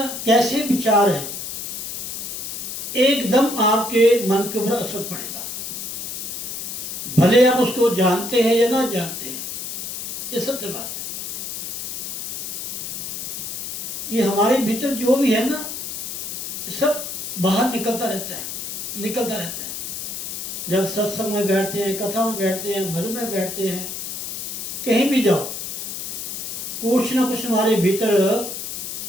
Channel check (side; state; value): left; noise; hiss, 6 dB below the sound